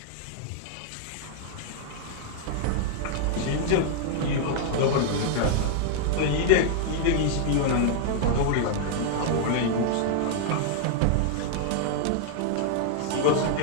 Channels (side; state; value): both; different; correlation -0.01